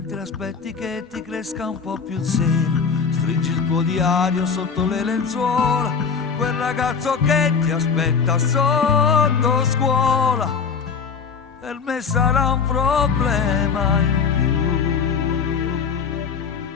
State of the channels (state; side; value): quieter; right; 5.9 dB